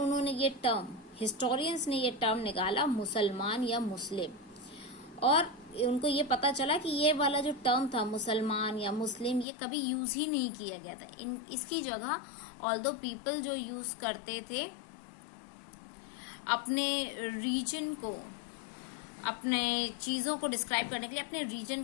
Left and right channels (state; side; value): drops out; right; at 9.5 s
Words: ये टर्म, हिस्टोरियंस ने ये टर्म निकाला मुसलमान या मुस्लिम। और उनको ये पता चला कि ये वाला जो टर्म था मुसलमान या मुस्लिम, ये कभी यूज ही नहीं किया गया था। इसकी जगह ऑल्दो पीपल जो यूज करते थे अपने रीजन को, अपने चीज़ों को डिस्क्राइब करने के लिए अपने रीजन